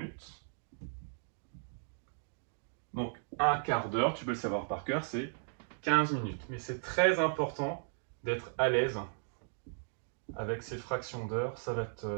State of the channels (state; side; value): silent; left; digital silence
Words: Donc un quart d'heure, tu peux le savoir par cœur, c'est 15 minutes. Mais c'est très important d'être à l'aise avec ces fractions d'heures. Ça va